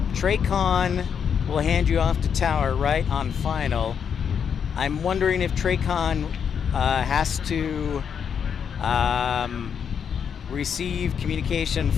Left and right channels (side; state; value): right; quieter; 7.4 dB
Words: Traycon will hand you off to Tower, right, on final. I'm wondering if Traycon has to receive communication